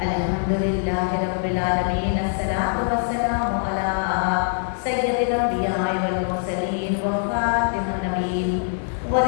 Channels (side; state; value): right; silent; 58 dB below the other